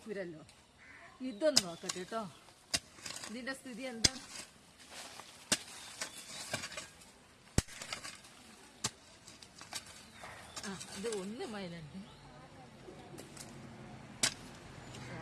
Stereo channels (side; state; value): both; identical; correlation 1.00